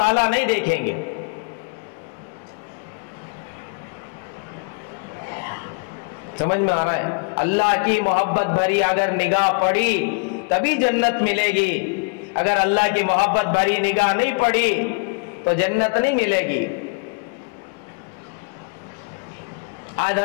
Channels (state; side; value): quieter; right; 34.1 dB